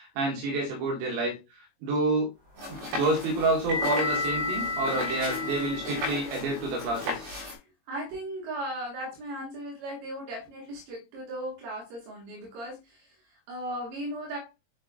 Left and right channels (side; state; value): left; late; 22 ms